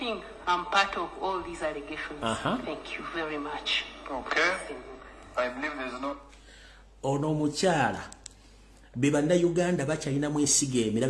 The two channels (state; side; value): identical; both; correlation 1.00